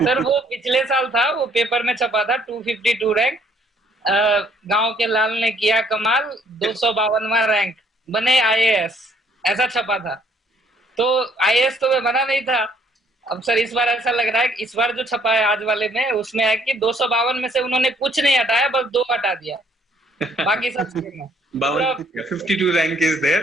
वो पिछले साल था, वो पेपर में छपा था 252 रैंक। गांव के लाल ने किया कमाल, 252वां रैंक, बने आईएएस, ऐसा छपा था। तो आईएएस तो मैं बना नहीं था। अब सर इस बार ऐसा लग रहा है कि इस बार जो छपा है आज वाले में, उसमें है कि 252 में से उन्होंने कुछ नहीं हटाया, बस 2 हटा दिया, बाकी सब सेम है पूरा। 52 रैंक इज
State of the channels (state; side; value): normal; both; correlation 0.64